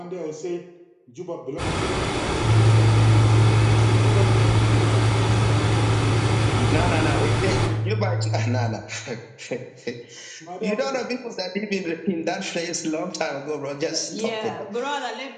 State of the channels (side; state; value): both; identical; correlation 1.00